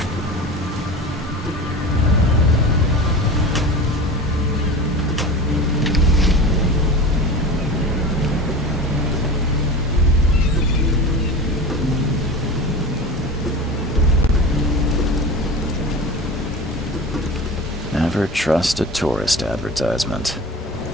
Never trust a tourist advertisement.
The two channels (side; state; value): both; normal; correlation 0.33